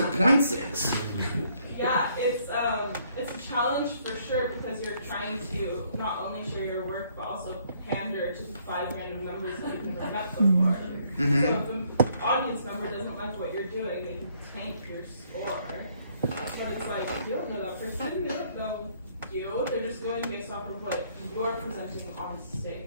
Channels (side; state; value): both; inverted; correlation -0.67